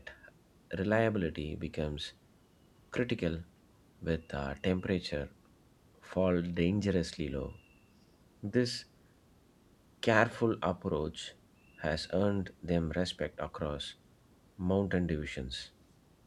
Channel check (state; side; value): identical; both; correlation 1.00